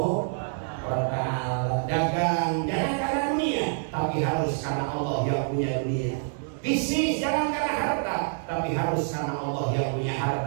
wa ta'ala. Dagang jangan karena dunia, tapi harus karena Allah yang punya dunia. Bisnis jangan karena harta, tapi harus karena Allah yang punya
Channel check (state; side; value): silent; left; digital silence